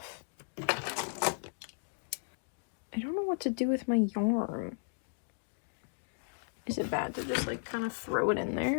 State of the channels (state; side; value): silent; right; digital silence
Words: I don't know what to do with my yarn. Is it bad to just like kind of throw it in